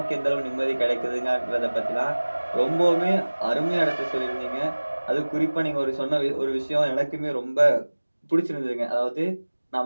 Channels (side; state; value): both; inverted; correlation -1.00